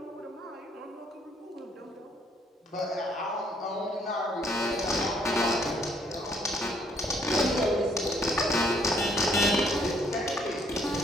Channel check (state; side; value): normal; both; correlation 0.67